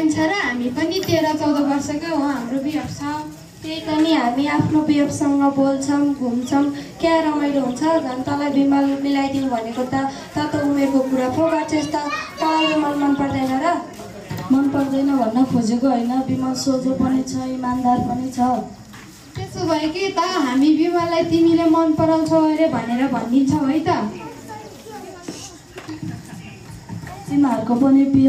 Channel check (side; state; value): both; identical; correlation 1.00